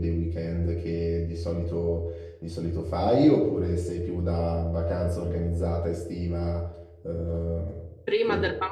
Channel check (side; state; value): both; identical; correlation 1.00